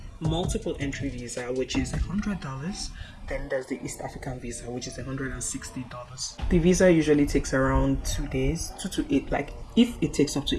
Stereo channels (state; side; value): identical; both; correlation 1.00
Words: multiple entry visa, which is $100. Then there's the East African visa, which is $160. The visa usually takes around 2 days, 2 to 8. Like if it takes up